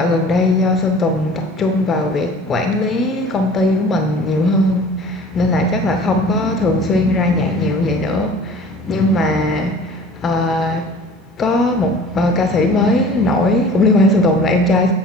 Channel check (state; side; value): normal; both; correlation 0.46